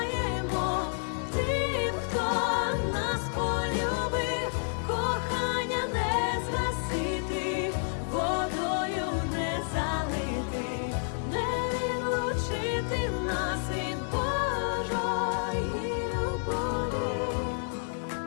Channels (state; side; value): silent; right; digital silence